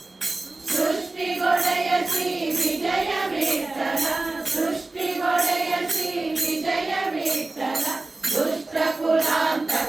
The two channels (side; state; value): left; quieter; 3.2 dB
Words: ಸೃಷ್ಟಿಗೊಡೆಯ ಶ್ರೀ ವಿಜಯ ವಿಠ್ಠಲ ಸೃಷ್ಟಿಗೊಡೆಯ ಶ್ರೀ ವಿಜಯ ವಿಠ್ಠಲ ದುಷ್ಟ